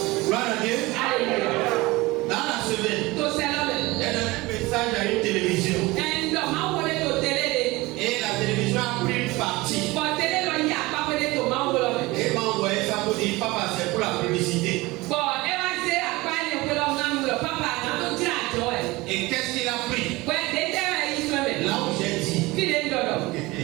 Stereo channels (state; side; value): quieter; left; 21.5 dB